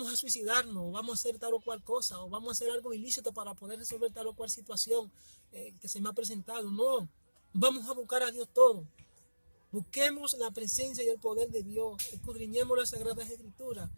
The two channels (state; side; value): inverted; both; correlation -1.00